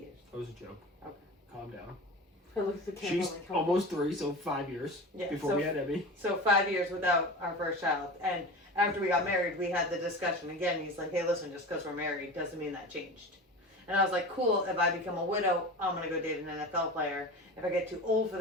That was a joke. Okay. Calm down. I looked at the camera She's like, oh. almost 3, so 5 years Yeah, before so- we had Emmy. So 5 years without our first child. And after we got married, we had the discussion again. He's like, hey, listen, just because we're married doesn't mean that changed. And I was like, cool, if I become a widow, I'm going to go date an NFL player. If I get too old for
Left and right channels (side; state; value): both; normal; correlation 0.32